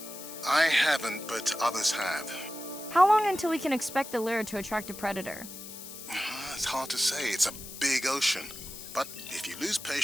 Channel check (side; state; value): left; noise; hiss, 12 dB below the sound